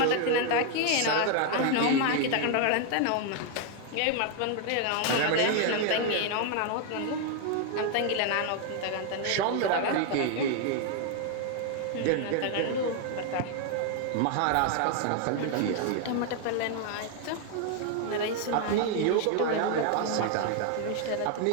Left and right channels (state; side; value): different; both; correlation 0.00